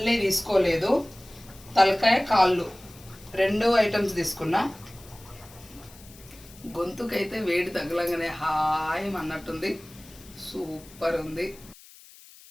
తీసుకోలేదు, తలకాయ కాళ్ళు 2 ఐటమ్స్ తీసుకున్నా. గొంతుకైతే వేడి తగలంగానే హాయ్ అన్నట్టుంది, సూపర్ ఉంది.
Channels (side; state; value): left; noise; hiss, 22 dB below the sound